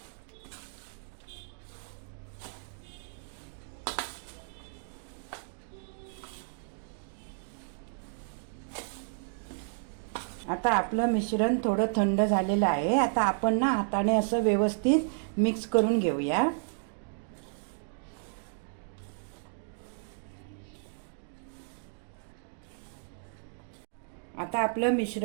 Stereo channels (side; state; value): left; silent; digital silence